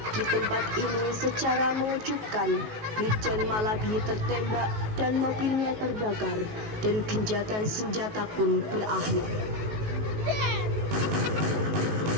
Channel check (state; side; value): late; left; 19 ms